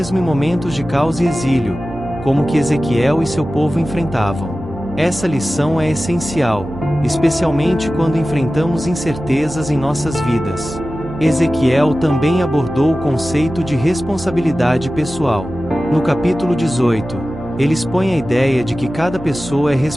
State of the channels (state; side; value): noise; right; hum, 16 dB below the sound